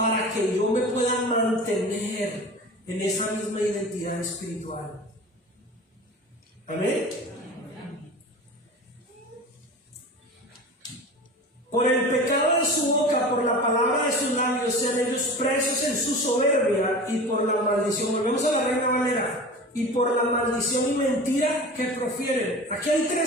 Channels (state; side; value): normal; both; correlation 0.35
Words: que yo me pueda mantener en esa misma identidad espiritual. Amén. Por el pecado de su boca, por la palabra de sus labios, sean ellos presos en su soberbia, y por la maldición. Volvemos a la Reina Valera. Y por la maldición y mentira que profieren. Aquí hay